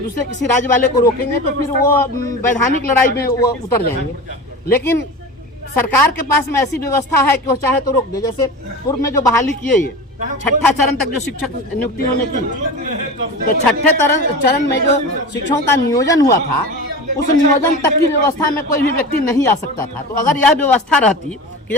किसी राज्य वाले को रोकेंगे तो फिर वो वैधानिक लड़ाई में वो उतर जाएंगे। लेकिन सरकार के पास में ऐसी व्यवस्था है कि वो चाहे तो रोक दे। जैसे पूर्व में जो बहाली किए ये 6ठा चरण तक जो शिक्षक नियुक्ति होने की, तो 6ठे चरण में जो शिक्षकों का नियोजन हुआ था उस नियोजन तक की व्यवस्था में कोई भी व्यक्ति नहीं आ सकता था। तो अगर यह व्यवस्था रहती कि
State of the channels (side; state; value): both; normal; correlation 0.31